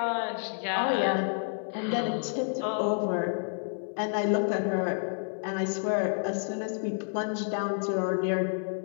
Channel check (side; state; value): right; silent; 58 dB below the other